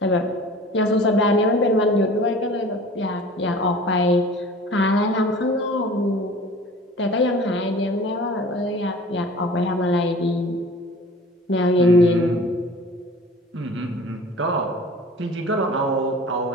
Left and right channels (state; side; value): normal; both; correlation 0.44